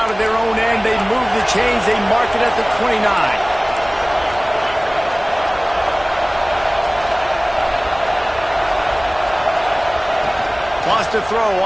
of their own end. They move the chains. They mark it at the 29. Lost a throw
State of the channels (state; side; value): noise; left; rumble, 20 dB below the sound